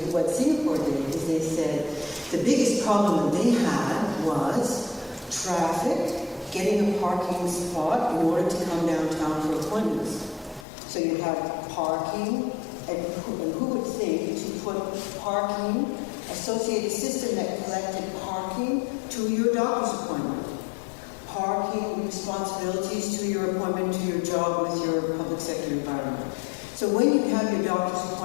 what Singapore did, is they said the biggest problem that they had was traffic, getting a parking spot in order to come downtown for appointments. So you have parking, and who would think to put parking, associate a system that collected parking to your doctor's appointment, parking responsibilities to your appointment, to your job with your public sector environment. So when you have your doctor's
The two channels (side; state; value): right; drops out; at 10.7 s